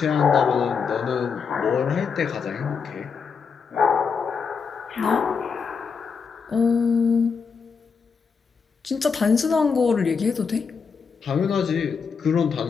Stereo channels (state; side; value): quieter; right; 5.7 dB